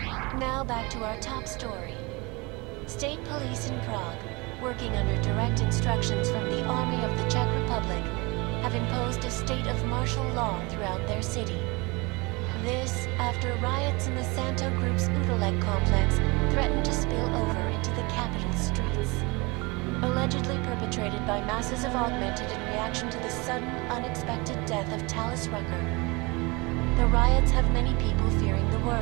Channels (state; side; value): quieter; left; 26.2 dB